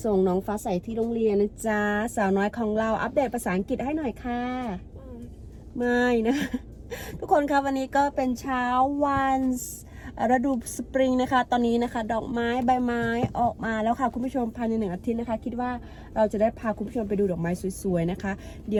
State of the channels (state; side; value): identical; both; correlation 1.00